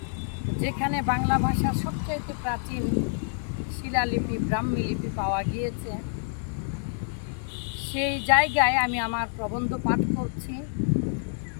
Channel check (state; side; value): silent; right; 60 dB below the other